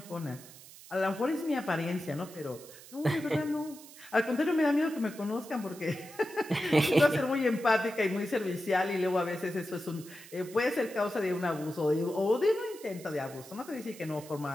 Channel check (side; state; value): right; noise; hiss, 18 dB below the sound